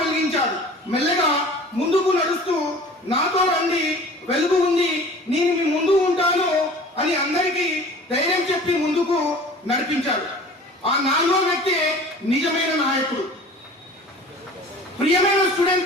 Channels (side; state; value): both; normal; correlation 0.44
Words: మెల్లగా ముందుకు నడుస్తూ, నాతో రండి, వెలుగు ఉంది, నేను మీ ముందు ఉంటాను అని అందరికీ ధైర్యం చెప్పి ముందుకు నడిపించాడు. ఆ 4వ వ్యక్తి నిజమైన నాయకుడు. ప్రియమైన